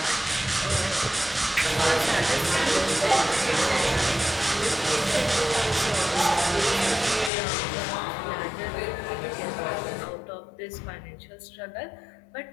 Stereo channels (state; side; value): drops out; right; at 7.3 s